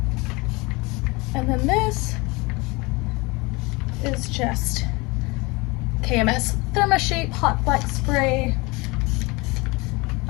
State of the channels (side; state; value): right; quieter; 25.4 dB